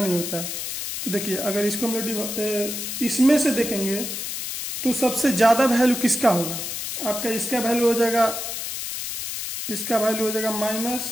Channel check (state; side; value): noise; left; hiss, 5 dB below the sound